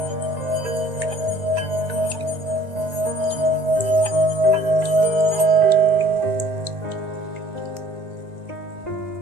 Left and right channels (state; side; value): late; left; 1.8 ms